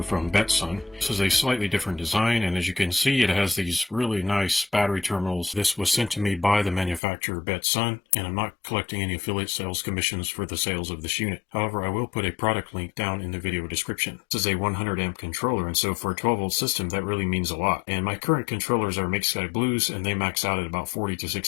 from Betsun. This is a slightly different design, and as you can see, it has these really nice battery terminals. This was sent to me by the manufacturer Betsun, and I'm not collecting any affiliate sales commissions for the sales of this unit. However, I will put a product link down in the video description. This is a 100 amp controller, and so for a 12 volt system, that really means a lot. And my current controllers are MakeSkyBlues, and they max out at about 40 to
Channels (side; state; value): right; drops out; at 7.0 s